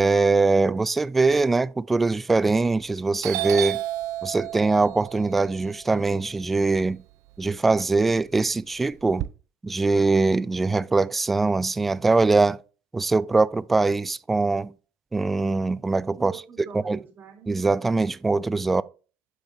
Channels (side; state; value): left; quieter; 3.2 dB